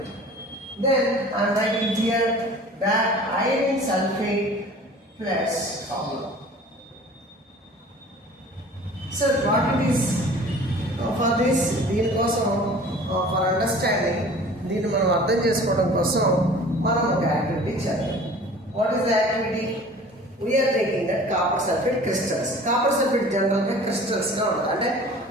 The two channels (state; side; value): normal; both; correlation 0.45